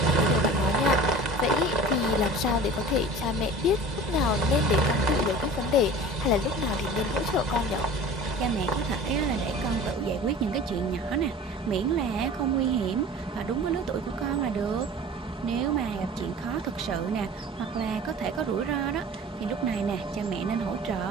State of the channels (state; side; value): normal; both; correlation 0.40